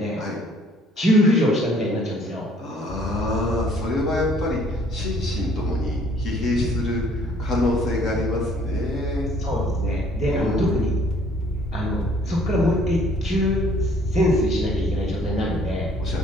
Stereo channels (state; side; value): normal; both; correlation 0.59